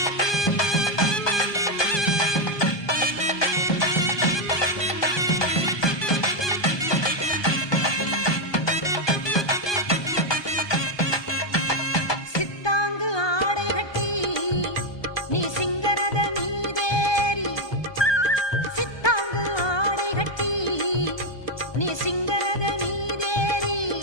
சித்தாங்கு ஆடை கட்டி நீ சிங்கரத மீதேறி சித்தாங்கு ஆடை கட்டி நீ சிங்கரத மீதேறி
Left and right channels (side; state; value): right; late; 1.2 ms